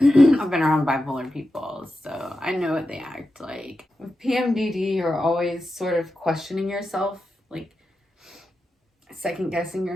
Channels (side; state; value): both; normal; correlation 0.90